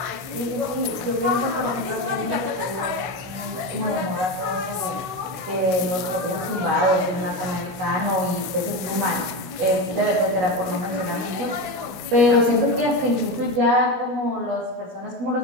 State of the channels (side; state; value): left; late; 16 ms